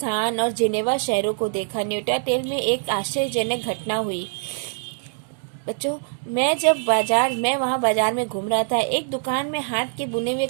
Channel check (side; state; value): left; silent; digital silence